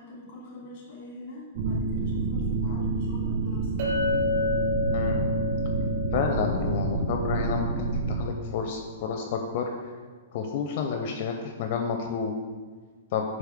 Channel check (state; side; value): inverted; both; correlation -0.33